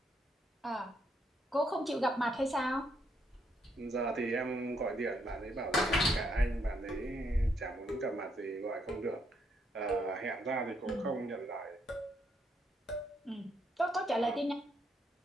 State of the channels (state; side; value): normal; both; correlation 0.75